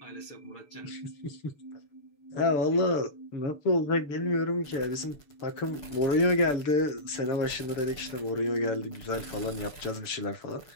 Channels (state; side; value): late; right; 6.9 ms